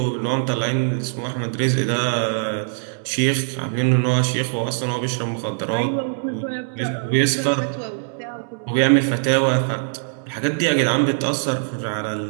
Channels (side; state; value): left; silent; 64 dB below the other